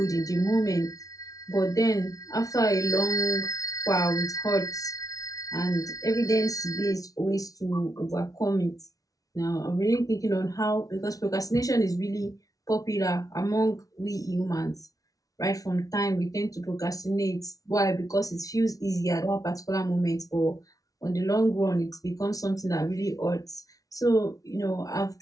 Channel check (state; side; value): late; right; 0.18 ms